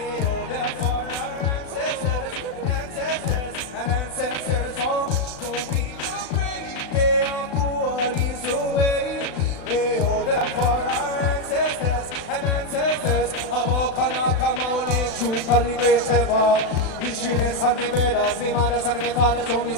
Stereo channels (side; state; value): right; late; 36 ms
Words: Call great ever. Historyless and me brothers, me mothers and me fathers, all me